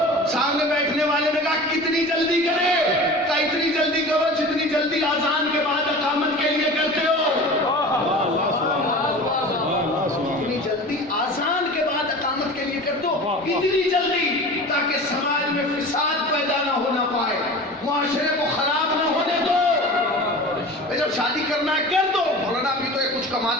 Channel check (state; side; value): normal; both; correlation 0.36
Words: سامنے بیٹھنے والے نے کہا کتنی جلدی کرے؟ کہا اتنی جلدی کرو جتنی جلدی اذان کے بعد اقامت کے لیے کرتے ہو، اتنی جلدی اذان کے بعد اقامت کے لیے کرتے ہو، اتنی جلدی تاکہ سماج میں فساد پیدا نہ ہونا پائے، معاشرے کو خراب نہ ہونے دو۔ جب شادی کرنا ہے کر دو۔ مولانا ابھی تو یہ کچھ